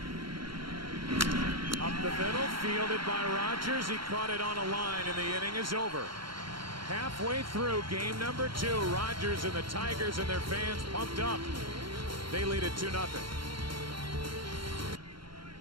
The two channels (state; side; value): late; left; 0.73 ms